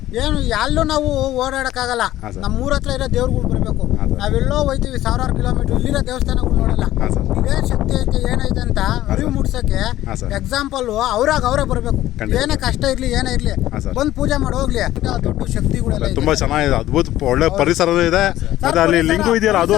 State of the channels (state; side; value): quieter; right; 14.3 dB